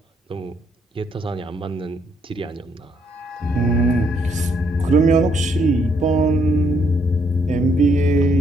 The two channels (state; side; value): normal; both; correlation 0.71